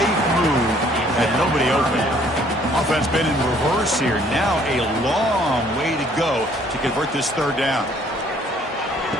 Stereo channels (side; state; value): both; normal; correlation 0.61